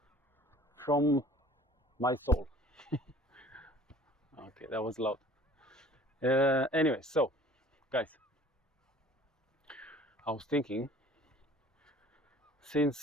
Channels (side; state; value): both; normal; correlation 0.49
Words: from my soul. Okay, that was loud. Anyway, so guys, I was thinking,